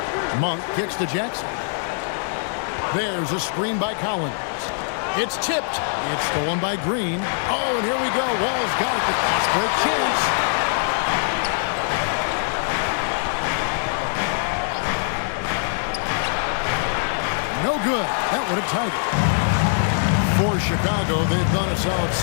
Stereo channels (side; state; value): right; silent; digital silence